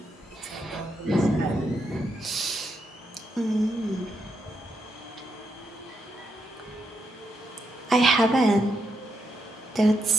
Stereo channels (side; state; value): both; normal; correlation 0.81